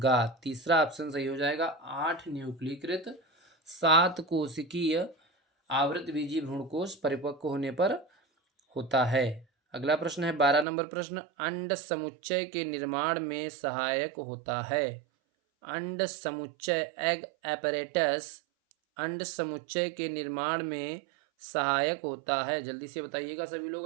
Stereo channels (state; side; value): drops out; left; at 10.7 s